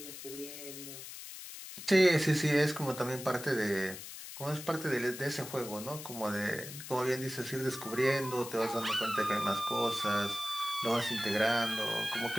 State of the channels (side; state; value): left; noise; hiss, 11 dB below the sound